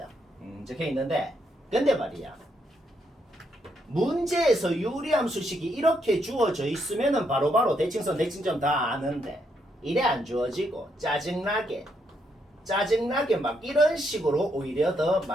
적혀 있는데, 근데 말이야, 문제에서 유리함수식이 이렇게 주어져 있으면은 바로바로 대칭선 대칭점 다 아는데 이래 안 주어지고 짜증나게 막 이런 식으로 오히려 더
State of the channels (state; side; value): normal; both; correlation 0.77